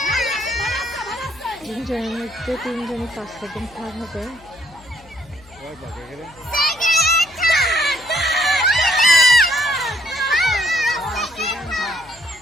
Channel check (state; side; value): noise; left; hum, 25 dB below the sound